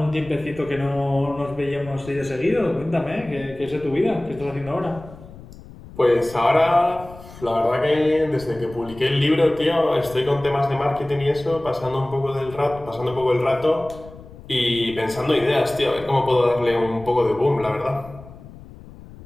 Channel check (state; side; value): noise; left; rumble, 18 dB below the sound